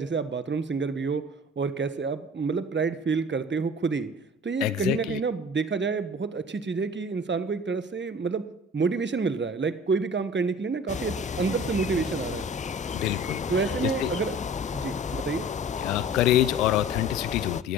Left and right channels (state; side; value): normal; both; correlation 0.44